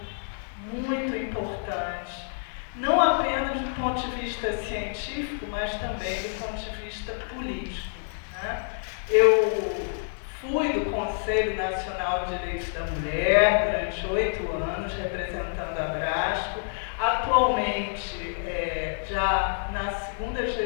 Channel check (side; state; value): right; silent; digital silence